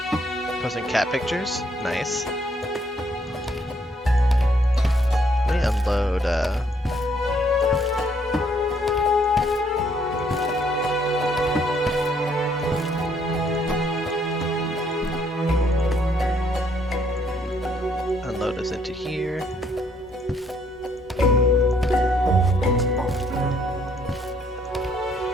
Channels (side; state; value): both; normal; correlation 0.68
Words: Posting cat pictures? Nice. Let me unload, unload us into here.